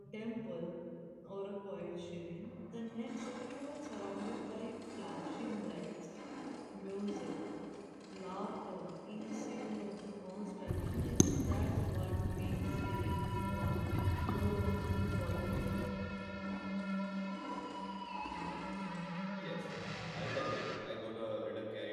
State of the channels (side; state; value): both; identical; correlation 1.00